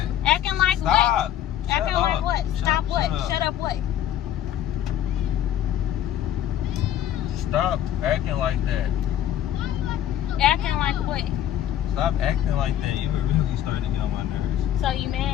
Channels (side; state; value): right; quieter; 11.1 dB